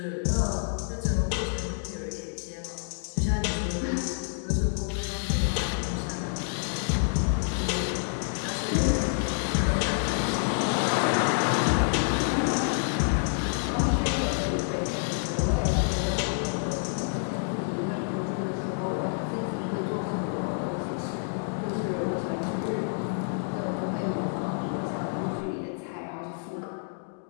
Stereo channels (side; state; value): right; silent; digital silence